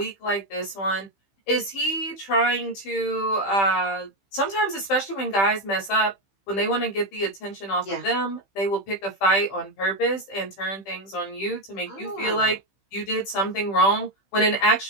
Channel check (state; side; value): late; right; 15 ms